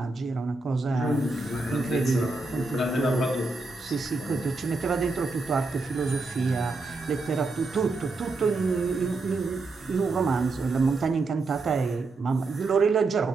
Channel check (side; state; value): left; quieter; 3.5 dB